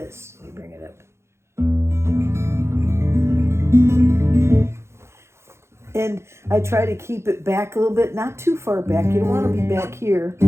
Let me bring it up. And I try to keep it back a little bit, not too far back. You don't want to be back here.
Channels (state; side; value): late; left; 0.13 ms